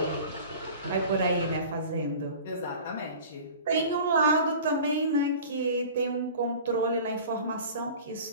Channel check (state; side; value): inverted; both; correlation -0.40